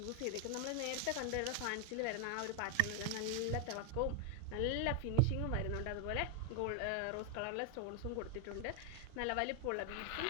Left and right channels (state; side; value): different; both; correlation 0.00